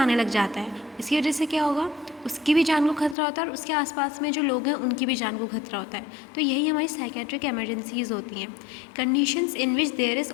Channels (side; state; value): right; drops out; at 3.2 s